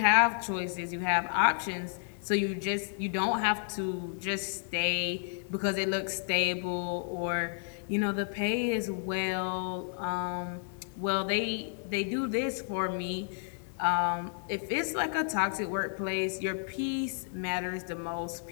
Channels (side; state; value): right; silent; digital silence